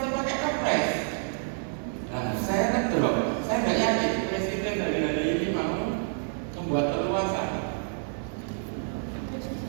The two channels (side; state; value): left; silent; 59 dB below the other